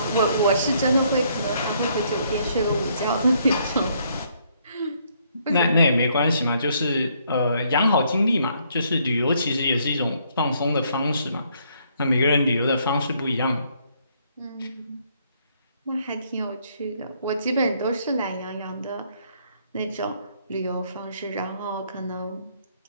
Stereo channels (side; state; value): both; inverted; correlation -0.69